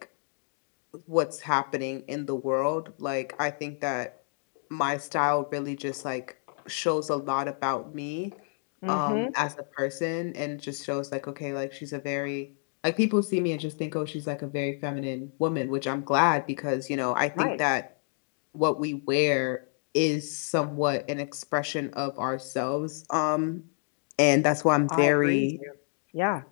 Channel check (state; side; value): silent; right; 57 dB below the other